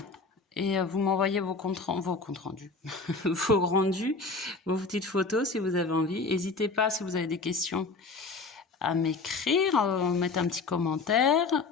et vous m'envoyez vos comptes rendus, vos rendus, vos petites photos si vous avez envie. N'hésitez pas si vous avez des questions à m'écrire, mettre un petit commentaire.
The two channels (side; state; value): right; quieter; 4.0 dB